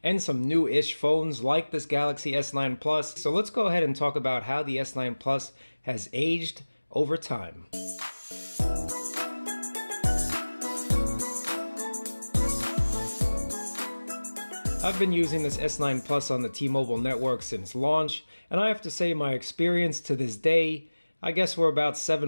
and some new-ish phones like this Galaxy S9 Plus. So let's go ahead and talk about how the S9 Plus has aged over time. I've been using this S9 Plus on the T-Mobile network since launch, and I have to say my experience to this day, I guess we're about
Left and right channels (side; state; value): both; inverted; correlation -1.00